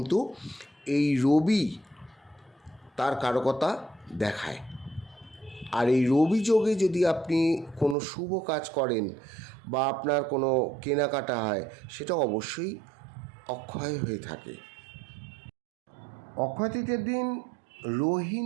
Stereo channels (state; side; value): drops out; left; at 8.0 s